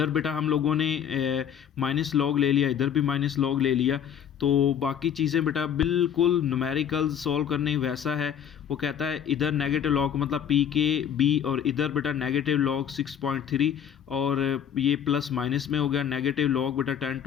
बेटा हम लोगों ने माइनस लॉग ले लिया, इधर भी माइनस लॉग ले लिया, तो बाकी चीज़ें बेटा बिल्कुल न्यूमेरिकल सॉल्व करने वैसा है। वो कहता है इधर नेगेटिव लॉग मतलब pKb, और इधर बेटा नेगेटिव लॉग 6.3, और ये प्लस माइनस में हो गया। नेगेटिव लॉग बेटा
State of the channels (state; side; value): quieter; right; 8.8 dB